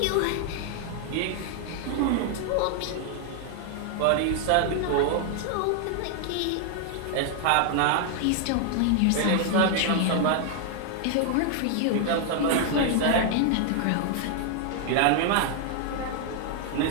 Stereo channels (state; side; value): different; both; correlation 0.00